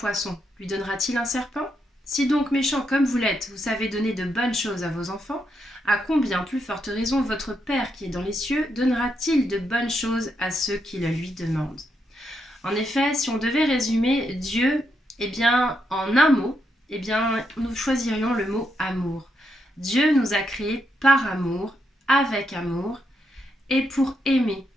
lui donnera-t-il un serpent? Si donc méchant comme vous l'êtes, vous savez donner de bonnes choses à vos enfants, à combien plus forte raison votre Père qui est dans les cieux donnera-t-il de bonnes choses à ceux qui le lui demandent? En effet, si on devait résumer Dieu, en un mot, nous choisirions le mot amour. Dieu nous a créés par amour, avec amour, et pour aimer.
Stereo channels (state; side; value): normal; both; correlation 0.81